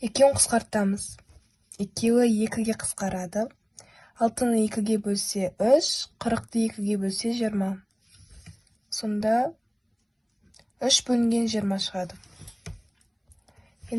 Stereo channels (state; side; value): identical; both; correlation 1.00